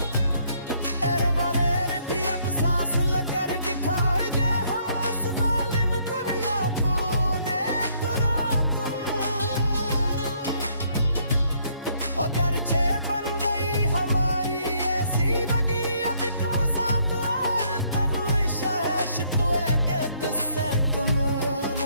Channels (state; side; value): inverted; both; correlation -0.67